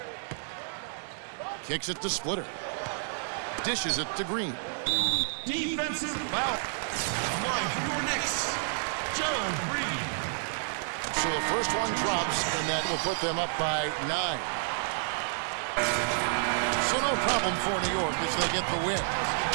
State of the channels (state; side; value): silent; left; digital silence